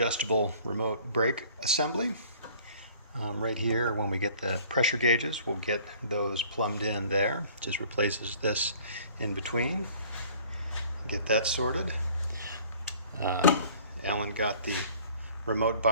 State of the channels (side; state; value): both; inverted; correlation -0.52